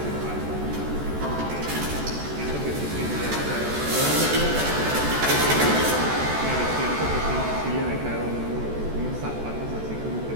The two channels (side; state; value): left; late; 14 ms